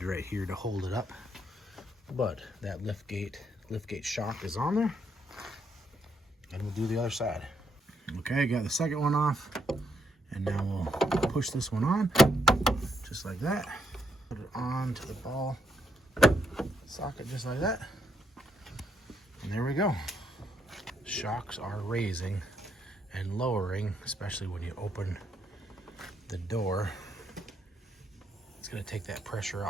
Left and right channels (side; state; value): both; normal; correlation 0.76